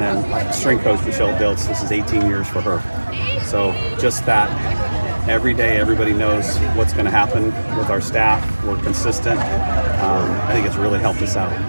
then strength coach Michelle Diltz, this is 18 years for her. So just that, every day everybody knows what's going to happen with our staff. We're consistent. I think it's really helped us out.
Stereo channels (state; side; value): inverted; both; correlation -1.00